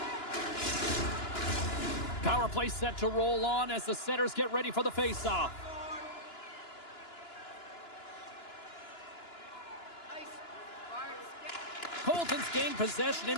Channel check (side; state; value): right; late; 2.9 ms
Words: Power play set to roll on as the setters get ready for the faceoff. Colton's gained possession